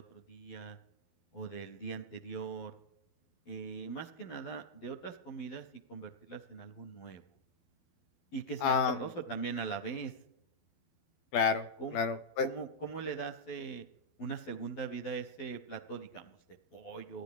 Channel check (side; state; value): right; late; 12 ms